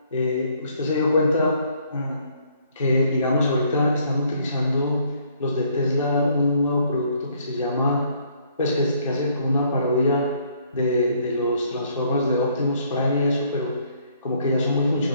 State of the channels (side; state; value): both; inverted; correlation -0.65